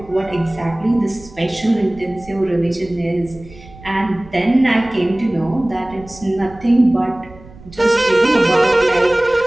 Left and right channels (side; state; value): right; noise; rumble, 21 dB below the sound